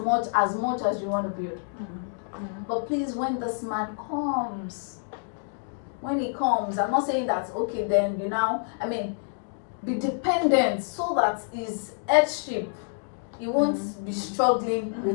as you want to build. But please, when this man comes, when he comes, I'm not saying that, okay, then be dependent so that his headship, he won't be struggling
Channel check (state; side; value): silent; right; digital silence